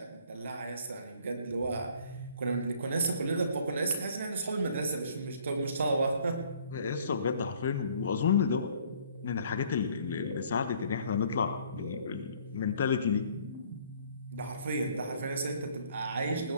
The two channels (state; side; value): inverted; both; correlation -0.58